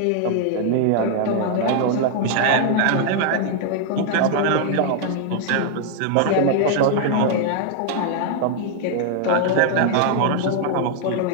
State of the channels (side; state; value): both; different; correlation 0.00